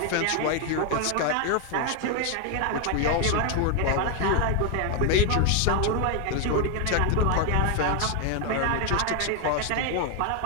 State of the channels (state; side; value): different; both; correlation 0.01